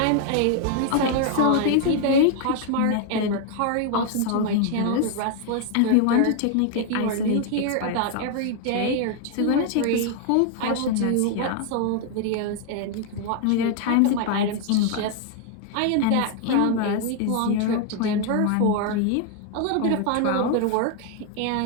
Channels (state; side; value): different; both; correlation 0.00